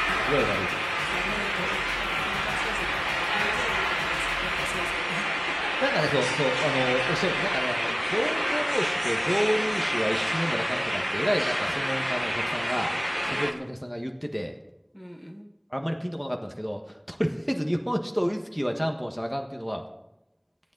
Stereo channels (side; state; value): both; identical; correlation 1.00